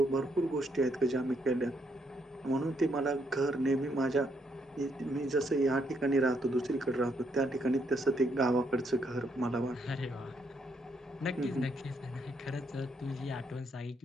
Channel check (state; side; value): normal; both; correlation 0.74